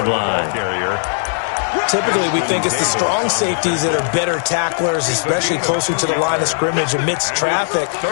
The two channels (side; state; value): right; silent; digital silence